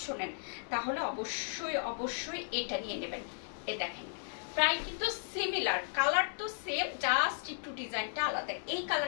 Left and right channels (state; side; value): silent; right; 54 dB below the other